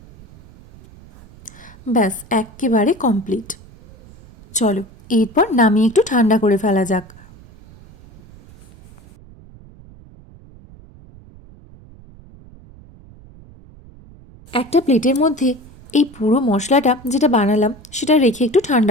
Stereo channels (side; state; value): right; noise; rumble, 22 dB below the sound